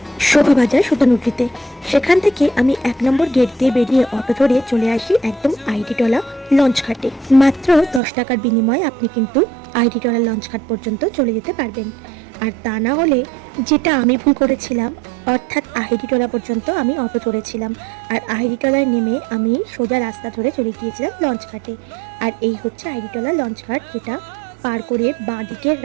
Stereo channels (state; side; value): drops out; left; at 8.0 s